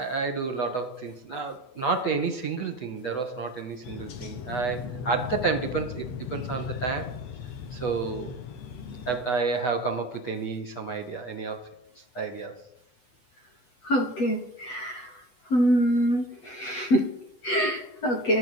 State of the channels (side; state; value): right; late; 8.1 ms